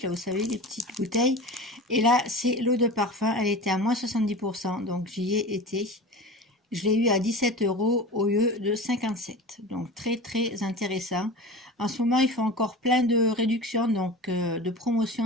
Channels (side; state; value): both; normal; correlation 0.33